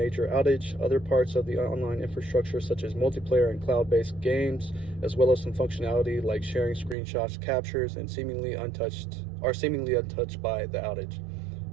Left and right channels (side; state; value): left; drops out; at 7.0 s